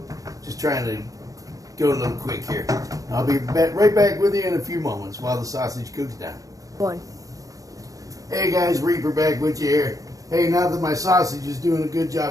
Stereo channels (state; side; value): late; left; 0.17 ms